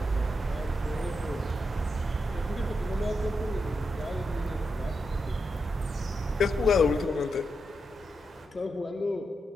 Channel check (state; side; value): normal; both; correlation 0.85